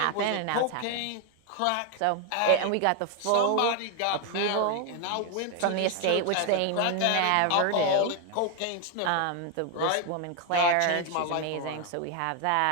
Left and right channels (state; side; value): different; both; correlation 0.01